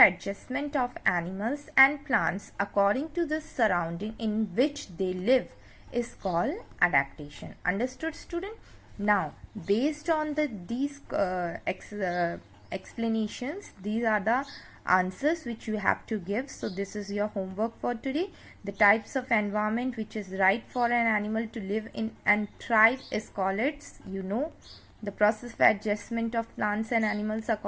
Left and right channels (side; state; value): both; identical; correlation 1.00